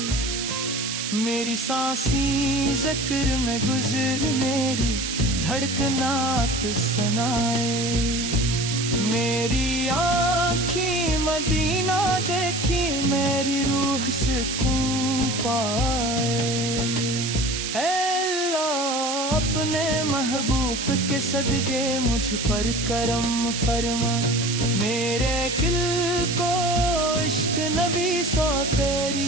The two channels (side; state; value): right; noise; hiss, 4 dB below the sound